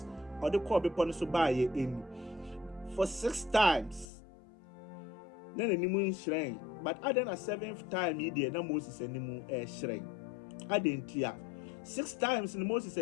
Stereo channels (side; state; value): right; drops out; at 4.0 s